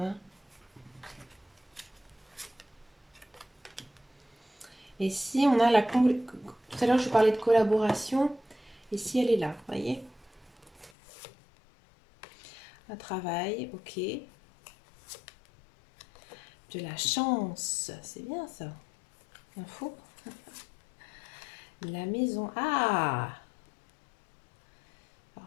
Et si on a la... Tout à l'heure, je parlais de collaboration. Et si elle est là, vous voyez? Un travail, ok. De la chance, c'est bien ça. Info. La maison. Ah!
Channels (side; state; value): right; drops out; at 10.9 s